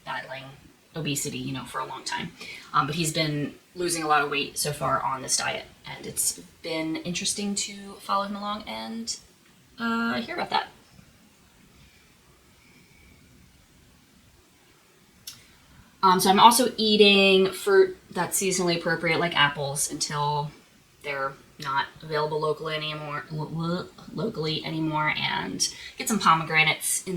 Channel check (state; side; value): identical; both; correlation 1.00